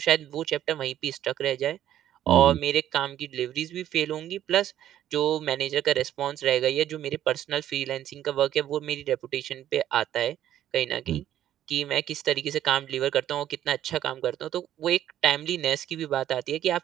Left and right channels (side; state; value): left; quieter; 11.7 dB